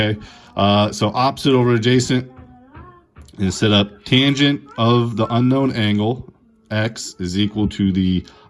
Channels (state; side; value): identical; both; correlation 1.00